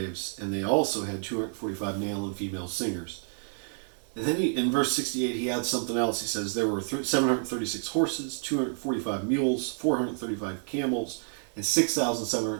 and they also had 245 male and female singers. And then in verse 68, he adds something else. He says there were 736 horses, 245 mules, 435 camels, and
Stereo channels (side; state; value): left; silent; digital silence